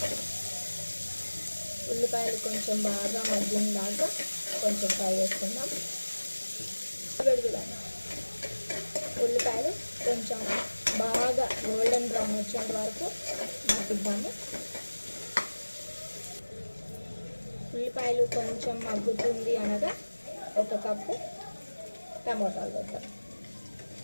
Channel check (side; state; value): both; inverted; correlation -1.00